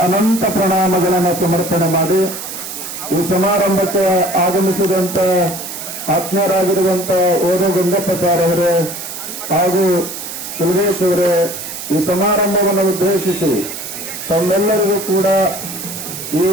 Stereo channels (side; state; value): right; noise; hiss, 8 dB below the sound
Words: ಅನಂತ ಪ್ರಣಾಮಗಳನ್ನು ಸಮರ್ಪಣೆ ಮಾಡಿ ಈ ಸಮಾರಂಭಕ್ಕೆ ಆಗಮಿಸಿದಂತ ಆತ್ಮೀಯರಾಗಿರುವಂತ ಓದು ಗುಂಡಪ್ಪ ಸಾರ್ ಅವರೇ ಹಾಗೂ ಕುಲದೇಶ್ ಅವರೇ, ಈ ಸಮಾರಂಭವನ್ನು ಉದ್ದೇಶಿಸಿ ತಮ್ಮೆಲ್ಲರಿಗೂ ಕೂಡ ಈ